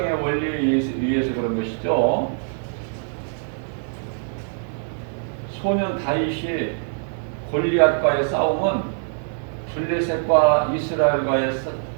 원리에 의해서 그런 것이죠. 소년 다윗이 골리앗과의 싸움은 블레셋과 이스라엘과의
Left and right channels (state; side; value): silent; left; digital silence